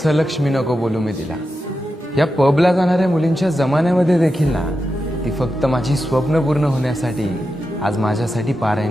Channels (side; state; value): both; normal; correlation 0.89